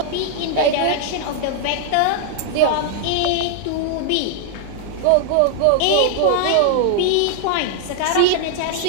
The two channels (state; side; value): different; both; correlation 0.00